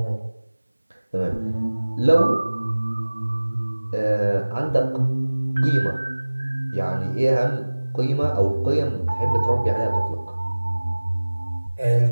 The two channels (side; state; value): both; inverted; correlation -1.00